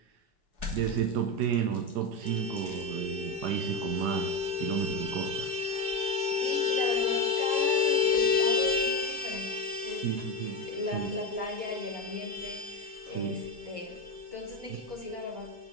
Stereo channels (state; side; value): late; left; 4.8 ms